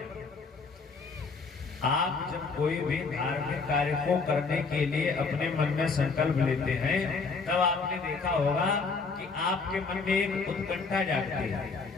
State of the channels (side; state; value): right; quieter; 4.5 dB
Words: आप जब कोई भी धार्मिक कार्य को करने के लिए अपने मन में संकल्प लेते हैं, तब आपने देखा होगा कि आपके मन में एक उत्कंठा जागती है